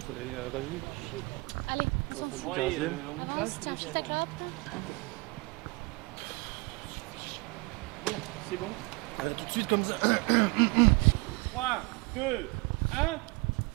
fait 20 minutes. Allez, Au fond du Ouais, 15e. on y va, je te les tiens, gêne. peut-être là. Bon, c'est bon. Tout de suite comme ça. 3, 2, 1,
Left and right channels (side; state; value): left; quieter; 26.1 dB